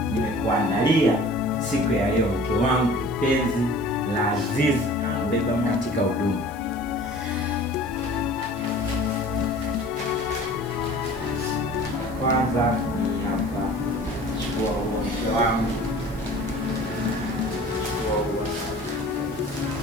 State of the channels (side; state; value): left; noise; hiss, 24 dB below the sound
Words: nimekuandalia siku ya leo, mke wangu kipenzi la azizi, mbeba katika huduma. Kwanza ni hapa, chukua huo mke wangu, chukua huo.